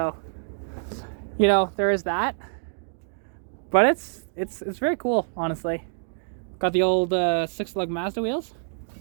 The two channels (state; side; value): silent; left; digital silence